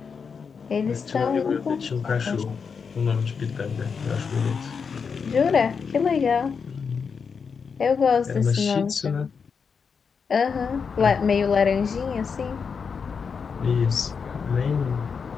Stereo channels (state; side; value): quieter; right; 5.9 dB